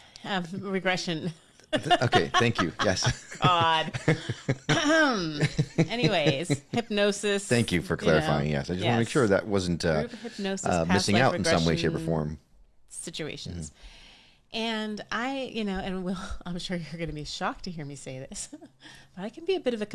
regression. Okay, thank you. Yes. God. Anyways, hypnosis. Thank you for clarifying. Yes, I just want to make sure that wasn't Group hypnosis, past missing life out in some way, shape, or regression form. situations. And I, and Will, I'm sure you're going to be shocked to hear me say this, but I can be a bit of a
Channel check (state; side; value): identical; both; correlation 1.00